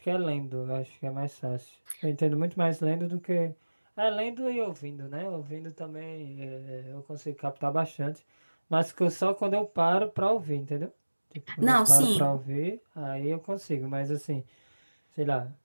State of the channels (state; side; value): inverted; both; correlation -1.00